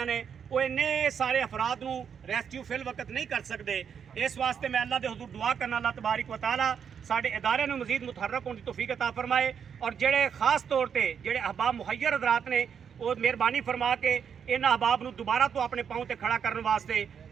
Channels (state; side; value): quieter; left; 7.4 dB